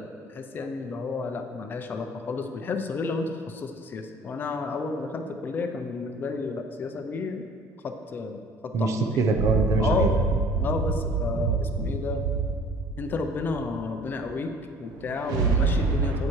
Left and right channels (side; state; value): both; normal; correlation 0.50